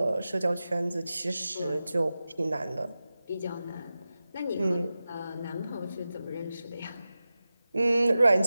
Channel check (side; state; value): both; inverted; correlation -0.94